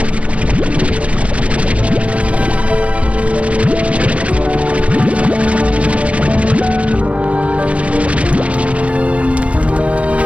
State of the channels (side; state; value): left; late; 0.063 ms